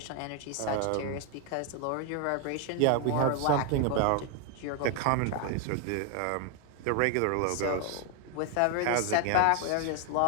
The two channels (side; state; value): both; different; correlation 0.00